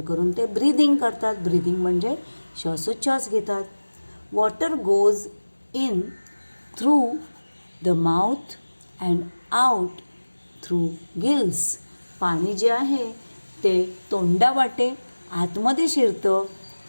ते ब्रीदिंग करतात. ब्रीदिंग म्हणजे श्वासोच्छ्वास घेतात. Water goes in through the mouth and out through gills. पाणी जे आहे ते तोंडावाटे आतमध्ये शिरतं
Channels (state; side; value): inverted; both; correlation -1.00